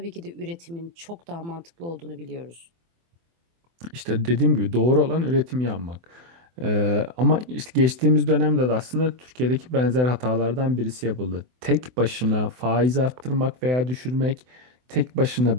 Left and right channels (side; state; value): left; late; 24 ms